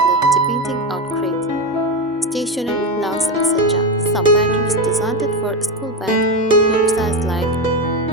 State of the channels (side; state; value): both; normal; correlation 0.15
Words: depending on grade. Stationery, lunch, etc. Some patterns designed for school bag look size like